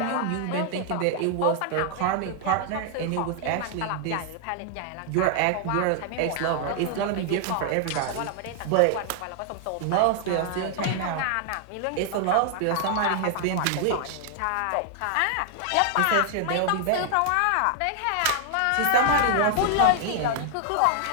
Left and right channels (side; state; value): both; different; correlation 0.00